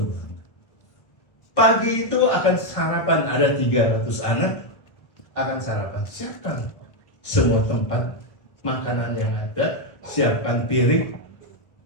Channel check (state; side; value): late; right; 1.1 ms